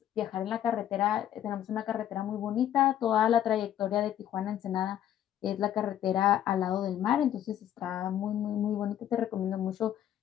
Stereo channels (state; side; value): quieter; right; 11.1 dB